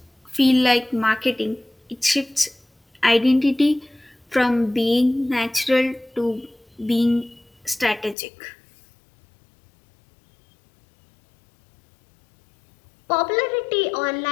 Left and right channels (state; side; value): drops out; right; at 8.2 s